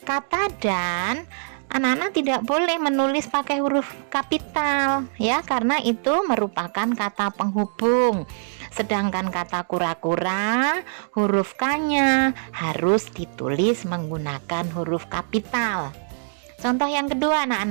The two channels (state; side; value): silent; left; digital silence